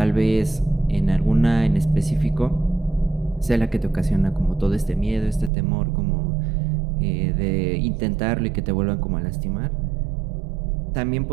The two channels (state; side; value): drops out; left; at 5.5 s